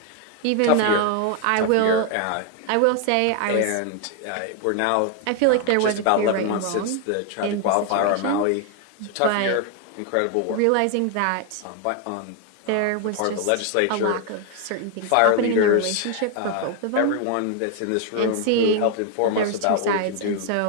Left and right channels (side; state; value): both; different; correlation 0.00